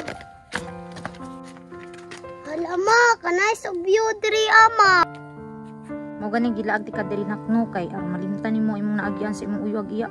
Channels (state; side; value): identical; both; correlation 1.00